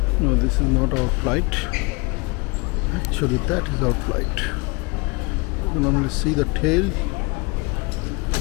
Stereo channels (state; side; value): quieter; right; 28.6 dB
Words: No, this is not our flight. Actually, that is our flight. You can only see the tail.